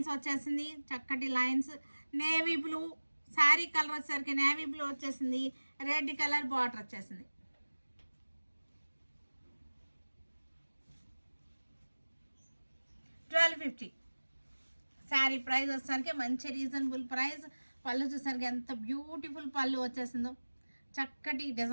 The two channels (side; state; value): both; inverted; correlation -1.00